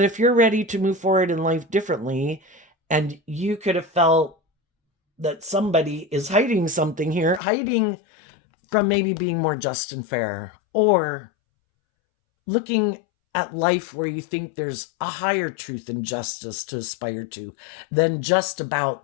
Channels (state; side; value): drops out; right; at 7.4 s